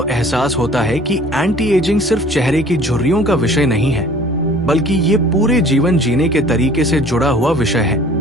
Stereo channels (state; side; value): normal; both; correlation 0.50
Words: एहसास होता है कि एंटी एजिंग सिर्फ चेहरे की झुर्रियों का विषय नहीं है, बल्कि ये पूरे जीवन जीने के तरीके से जुड़ा हुआ विषय है।